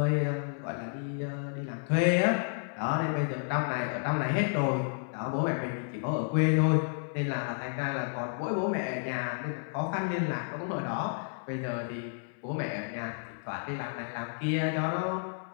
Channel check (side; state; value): right; silent; 57 dB below the other